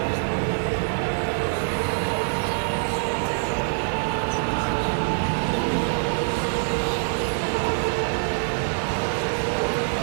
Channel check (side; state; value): left; silent; digital silence